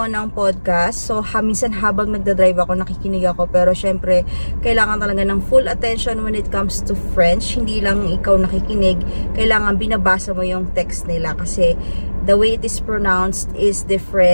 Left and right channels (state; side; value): inverted; both; correlation -1.00